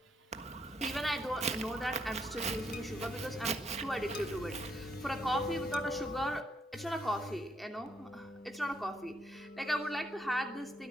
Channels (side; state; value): both; normal; correlation 0.74